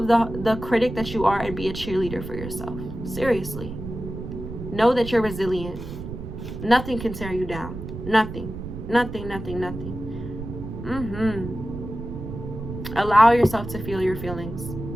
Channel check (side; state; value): right; noise; rumble, 9 dB below the sound